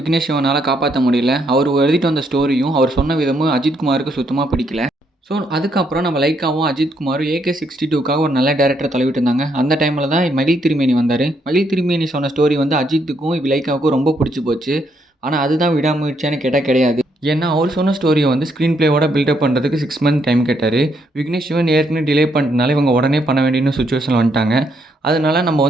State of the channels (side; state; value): both; normal; correlation 0.74